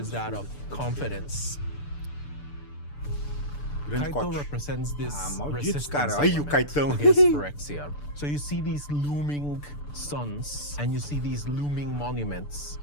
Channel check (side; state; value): right; late; 6.8 ms